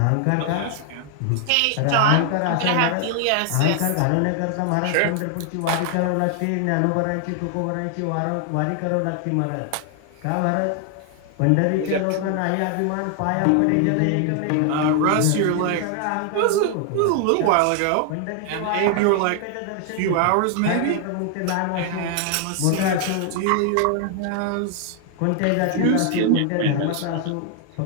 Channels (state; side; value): different; both; correlation 0.00